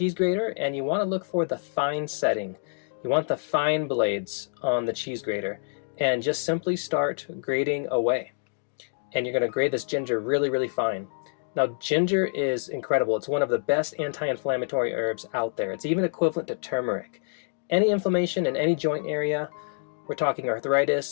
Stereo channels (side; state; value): right; silent; digital silence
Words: grater, and you want to look for the fine setting. You want the fine blades on the cheese grater, and just simply start grating away. And you're going to grate this ginger really, really fine. Now, ginger is incredible. It's one of the best anti-inflammatory herbs out there. It's even equivalent to turmeric. Any inflammation in any joint area, we're talking